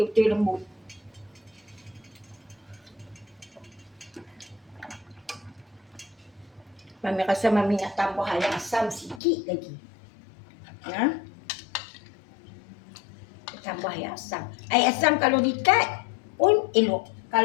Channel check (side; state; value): right; drops out; at 9.2 s